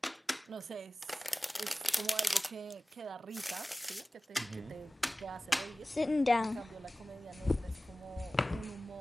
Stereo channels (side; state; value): both; normal; correlation 0.97